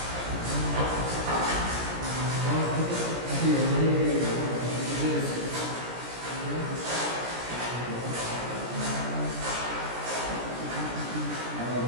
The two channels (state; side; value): late; left; 17 ms